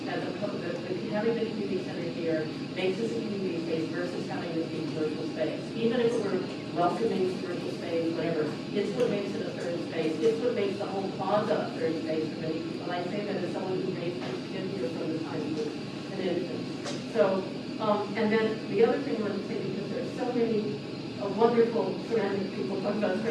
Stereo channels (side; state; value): both; identical; correlation 1.00